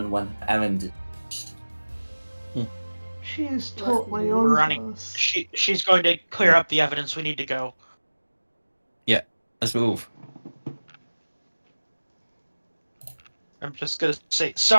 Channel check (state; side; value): inverted; both; correlation -1.00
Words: when her errand is finished. She is totally We're on running. us. She's going to clear up the evidence. We need to go. Let's move. I'm just gonna say